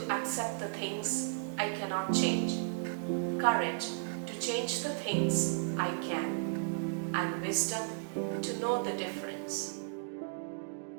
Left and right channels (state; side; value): silent; left; digital silence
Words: accept the things I cannot change, courage to change the things I can, and wisdom to know the difference.